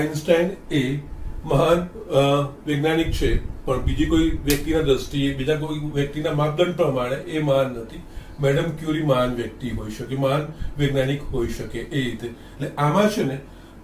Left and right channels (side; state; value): both; identical; correlation 1.00